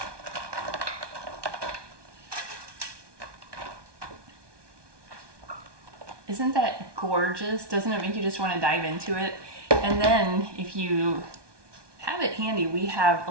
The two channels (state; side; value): late; left; 1.2 ms